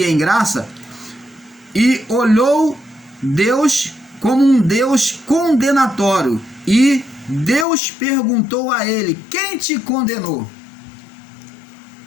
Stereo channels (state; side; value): drops out; right; at 7.7 s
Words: graça, e olhou Deus como um Deus condenatório, e Deus perguntou a ele: quem te condenou?